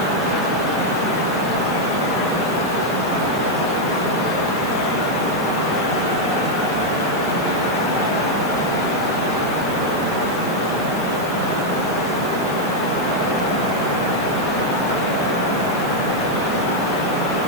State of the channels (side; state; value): left; noise; hiss, 15 dB below the sound